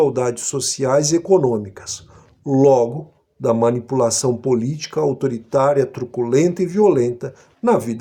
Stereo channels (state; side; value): identical; both; correlation 1.00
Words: sociais e econômicas, logo da manipulação política autoritária, truculenta e violenta na